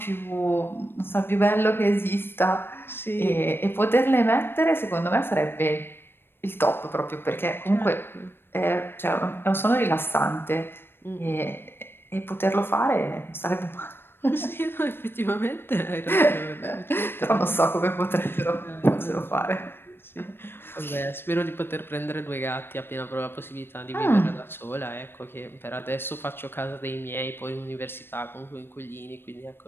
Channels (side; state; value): right; late; 0.10 ms